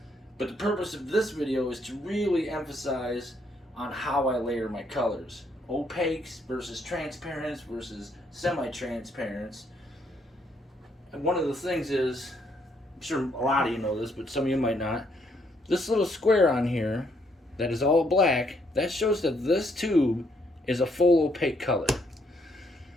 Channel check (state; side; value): normal; both; correlation 0.71